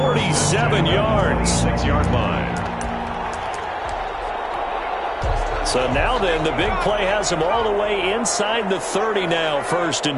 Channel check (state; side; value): identical; both; correlation 1.00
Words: yards. 6-yard line. So now then, the big play has him all the way inside the 30 now, 1st